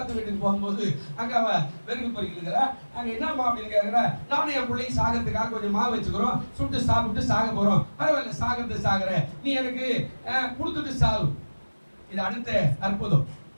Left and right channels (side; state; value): both; inverted; correlation -1.00